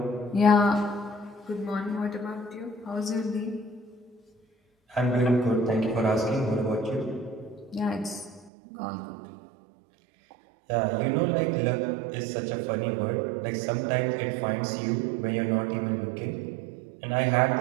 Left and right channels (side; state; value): left; drops out; at 8.5 s